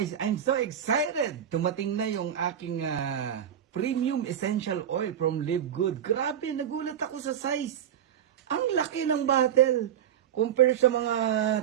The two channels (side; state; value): left; quieter; 9.5 dB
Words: I'm so excited! Tumating na yung aking premium essential oil from Live Good. Grabe, nagulat ako sa size. Ang laki ng bottle. Compare sa mga